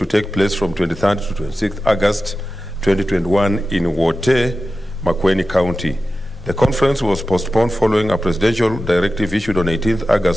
take place from 23rd to 26th August 2021 in Wote, Makueni County. The conference was postponed following a presidential directive issued on 18th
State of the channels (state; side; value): normal; both; correlation 0.93